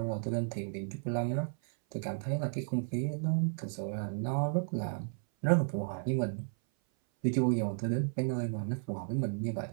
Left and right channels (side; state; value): left; silent; 55 dB below the other